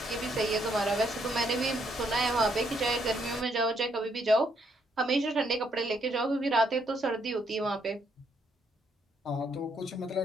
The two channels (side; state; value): both; normal; correlation 0.73